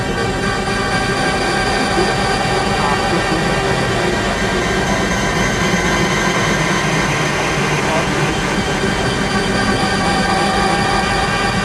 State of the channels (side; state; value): both; identical; correlation 1.00